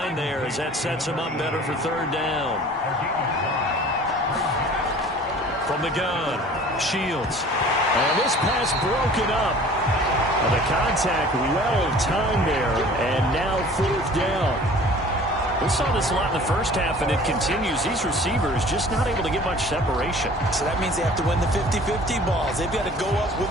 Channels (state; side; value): normal; both; correlation 0.47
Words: there as that sets them up better for 3rd down. From the gun. Shields. And this pass broken up. The contact well timed there, and now 4th down. We saw this a lot in the first half, and it continues. These receivers just not able to get much separation. So that means they have to win the 50-50 balls. They've got to go up with